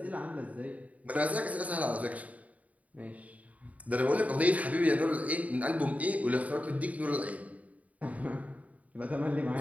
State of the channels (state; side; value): late; left; 0.070 ms